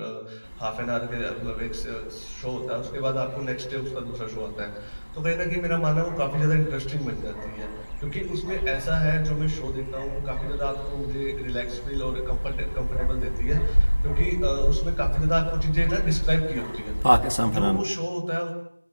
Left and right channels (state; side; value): inverted; both; correlation -1.00